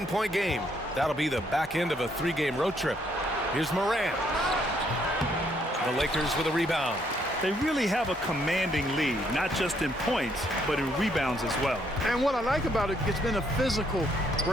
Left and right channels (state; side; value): normal; both; correlation 0.70